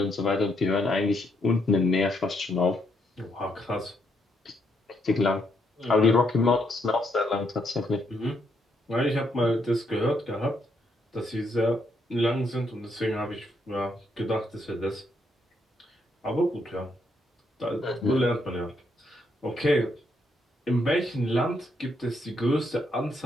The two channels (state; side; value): normal; both; correlation 0.76